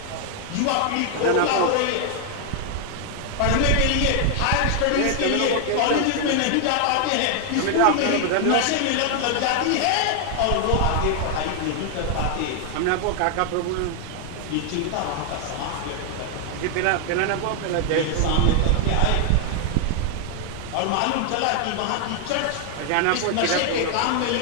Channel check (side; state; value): both; different; correlation 0.00